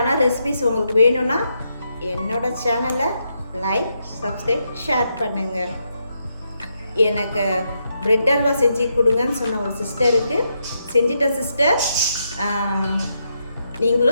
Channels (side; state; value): both; inverted; correlation -0.81